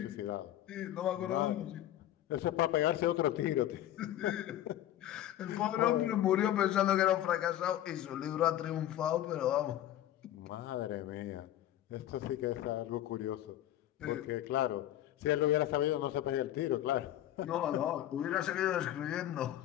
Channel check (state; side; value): quieter; right; 12.8 dB